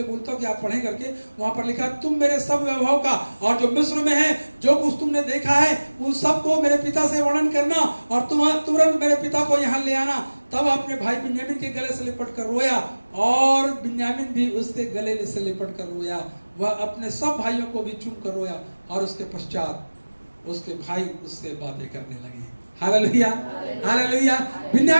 बोलता हूँ कि आप पढ़ें करके, वहां पर लिखा, तुम मेरे सब वैभव का और जो मिस्र में है जो कुछ तुमने देखा है उन सबको मेरे पिता से वर्णन करना, और तुम तुरंत मेरे पिता को यहाँ ले आना। तब अपने भाई बिन्यामीन के गले से लिपट कर रोया, और बिन्यामीन भी उसके गले से लिपट कर रोया। वह अपने सब भाइयों को भी चूम कर रोया, और उसके पश्चात उसके भाई उससे बातें करने लगे। Hallelujah, hallelujah.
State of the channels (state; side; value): inverted; both; correlation -1.00